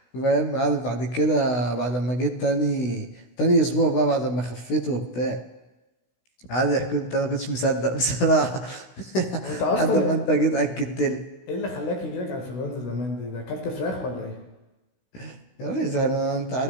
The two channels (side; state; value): right; late; 16 ms